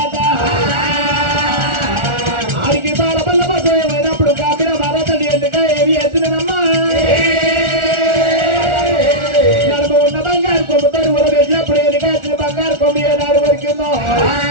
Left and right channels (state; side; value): late; left; 1.4 ms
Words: ఆడికి బాల బల్ల బసమైనప్పుడు కాంబీర మహారాజు అని ఎందుగా ఏమి వేసినమ్మా నడుము ఉన్న బంగారు కొమ్ముతో ఉడబెట్టినప్పుడు ఎందుకు వచ్చిన బంగారు కొమ్ము ఏనాడు వరకుందో